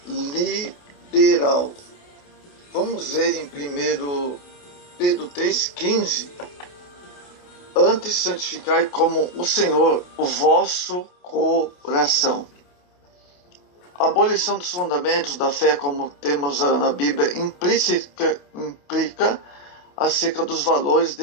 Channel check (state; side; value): late; right; 28 ms